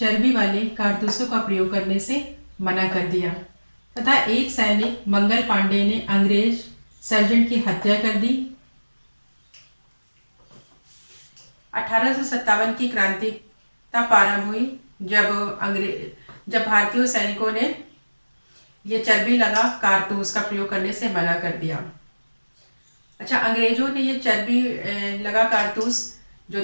वाले कारतूसों का प्रयोग करने से मना कर दिया तथा एक सैनिक मंगल पांडे ने अंग्रेज सर्जेंट की हत्या कर दी। 1857 की क्रांति तब प्रारंभ हुई जब भारतीय सैनिकों ने ये चर्बी लगा कारतूस का प्रयोग करने से मना कर दिया। अच्छा, अंग्रेजों ने ये चर्बी लगा कारतूस जो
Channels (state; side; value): inverted; both; correlation -1.00